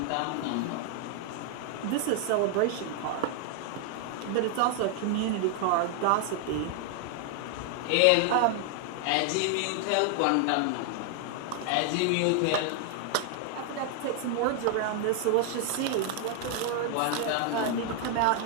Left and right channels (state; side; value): different; both; correlation 0.00